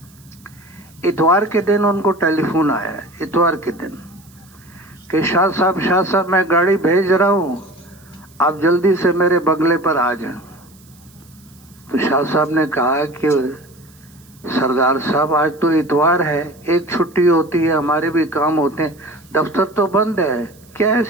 اتوار کے دن ان کو ٹیلی فون آیا، اتوار کے دن، کہ شاہ صاحب میں گاڑی بھیج رہا ہوں، آپ جلدی سے میرے بنگلے پر آ جائیں. تو شاہ صاحب نے کہا کہ سردار صاحب آج تو اتوار ہے، ایک چھٹی ہوتی ہے، ہمارے بھی کام ہوتے ہیں، دفتر تو بند ہے، کیا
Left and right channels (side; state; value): right; noise; hiss, 28 dB below the sound